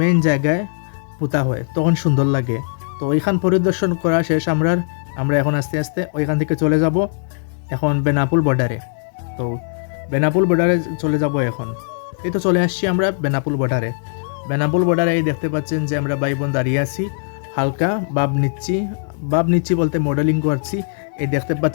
জায়গায় পোতা হয়, তখন সুন্দর লাগে। তো ওইখান পরিদর্শন করা শেষ আমরা এখন আস্তে আস্তে ওইখান থেকে চলে যাব এখন বেনাপুল বর্ডারে। তো বেনাপুল বর্ডারে চলে যাব এখন। এই তো চলে আসছি আমরা বেনাপুল বর্ডারে। এই দেখতে পাচ্ছেন যে আমরা ভাই বোন দাঁড়িয়ে আছি, হালকা ভাব নিচ্ছি বলতে মডেলিং করছি। এই দেখতে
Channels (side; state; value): right; silent; digital silence